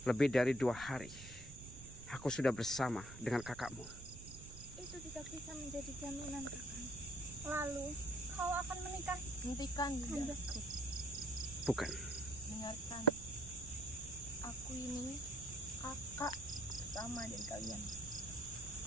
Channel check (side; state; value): right; noise; rumble, 13 dB below the sound